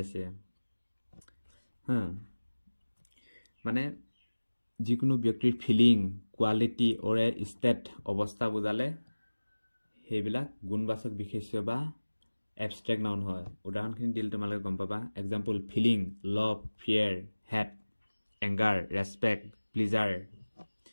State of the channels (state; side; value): inverted; both; correlation -1.00